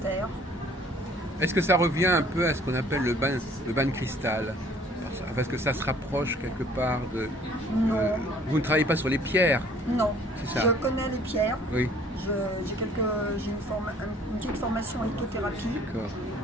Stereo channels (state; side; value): normal; both; correlation 0.55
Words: Est-ce que ça revient un peu à ce qu'on appelle le bain de cristal? Parce que ça se rapproche quelque part de... Non. Vous ne travaillez pas sur les pierres? Non, C'est ça. je connais les pierres. Oui, J'ai une petite formation en lithothérapie, d'accord.